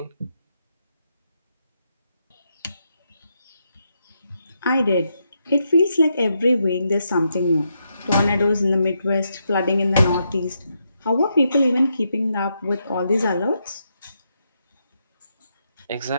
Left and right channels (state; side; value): inverted; both; correlation -0.81